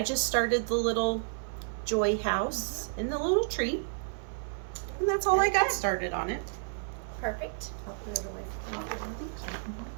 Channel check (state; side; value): silent; left; 57 dB below the other